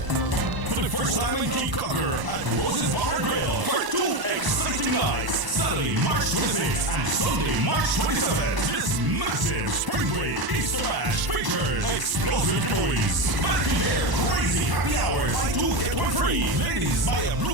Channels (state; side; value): late; left; 1.0 ms